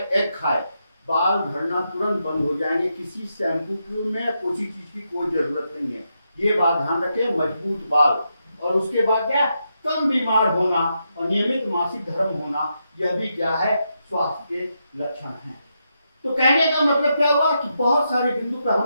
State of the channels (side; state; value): both; inverted; correlation -0.83